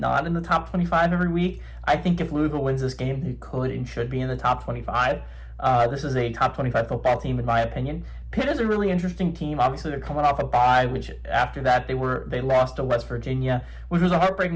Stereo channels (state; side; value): identical; both; correlation 1.00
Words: in the top 25 every week. I think if Louisville wins this game, they could and should be in the top 25. This is a top 25 football team, in my opinion. Pitt is a really interesting team. Obviously, they're coming off a bye, which after that they lost to West Virginia, which was a